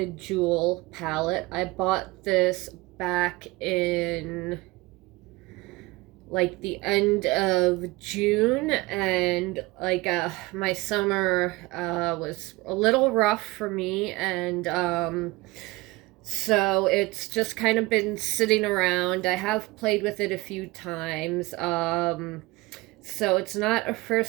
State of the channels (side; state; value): left; quieter; 21.9 dB